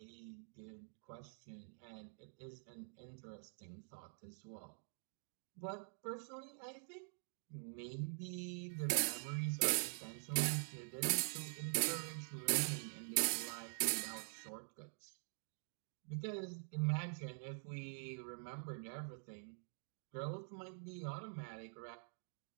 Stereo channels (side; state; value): left; silent; digital silence